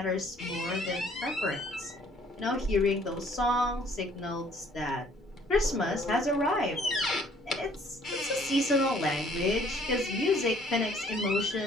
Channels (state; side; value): normal; both; correlation 0.60